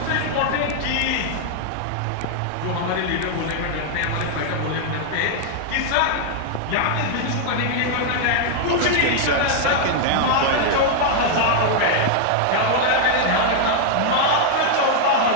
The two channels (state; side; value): different; both; correlation 0.00